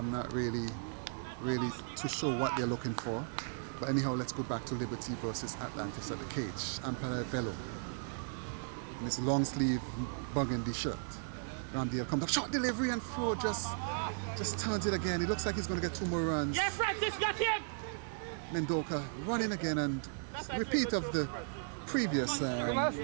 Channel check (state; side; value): silent; left; digital silence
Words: not really too sure what they're looking for. But anyhow, let's go back to Liberty versus Atlantis at the cage. Umpire Velo. In his long sleeve burgundy shirt. Ramdial comes up, short delivery and throw, just turns it again. He looks like he's going to get 2 more runs. Yeah, Francis, got him! Mendoka running again, and repeat of the previous Come on,